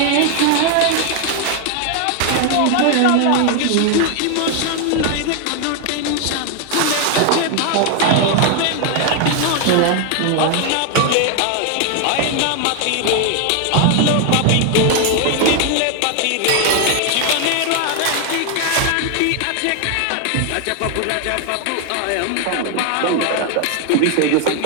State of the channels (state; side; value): different; both; correlation 0.01